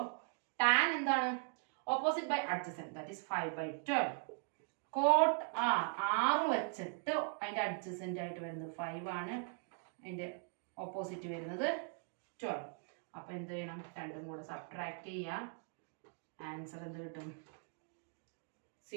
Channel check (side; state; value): left; silent; 51 dB below the other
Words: tan എന്താണ്? Opposite by adjacent, that is 5/12. Cot R വെച്ചിട്ട് അതിന്റെ അഡ്ജസന്റ് ആയിട്ട് വരുന്നത് 5 ആണ്, അതിന്റെ ഓപ്പോസിറ്റ് വരുന്നത് 12. അപ്പൊ എന്ത് ചെയ്യണം? രണ്ടും കൂടെ സബ്ട്രാക്ട് ചെയ്യാം. ആൻസർ എന്ത് കിട്ടും?